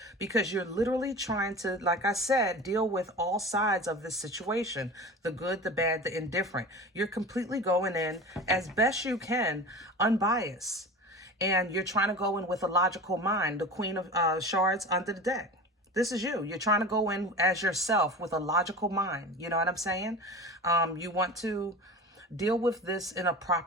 because you're literally trying to, like I said, deal with all sides of this situation. The good, the bad, the indifferent. You're completely going in as best you can, unbiased. And you're trying to go in with a logical mind. The Queen of Shards under the deck. This is you. You're trying to go in as yourself with a logical mind. You know what I'm saying? You want to deal with this in a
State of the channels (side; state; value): both; normal; correlation 0.33